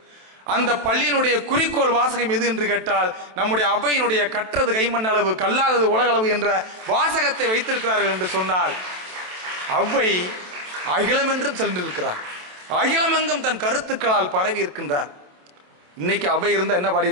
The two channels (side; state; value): left; late; 27 ms